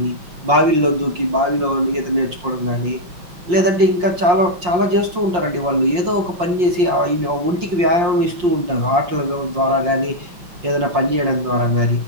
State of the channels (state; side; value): late; left; 5.6 ms